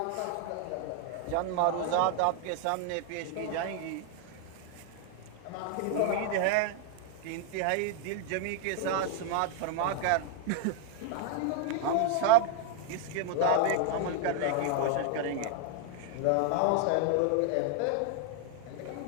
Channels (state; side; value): different; both; correlation 0.00